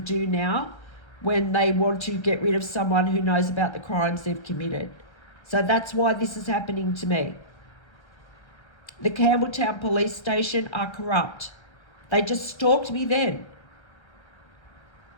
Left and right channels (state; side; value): late; right; 1.3 ms